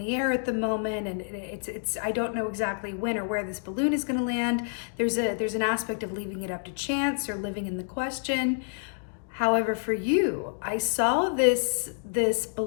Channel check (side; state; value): right; silent; digital silence